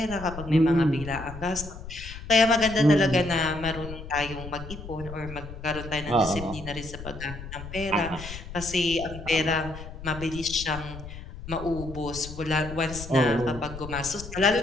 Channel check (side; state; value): left; noise; rumble, 11 dB below the sound